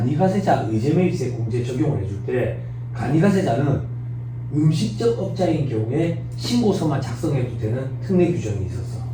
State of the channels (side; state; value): both; identical; correlation 1.00